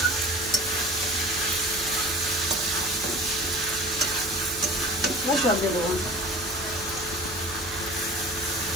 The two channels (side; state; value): right; noise; hum, 16 dB below the sound